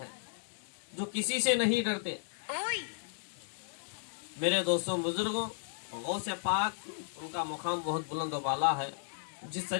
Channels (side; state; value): right; silent; digital silence